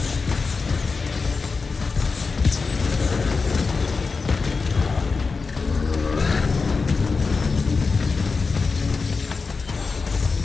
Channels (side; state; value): right; quieter; 4.5 dB